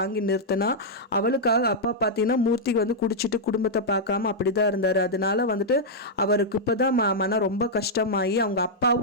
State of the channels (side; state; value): both; normal; correlation -0.06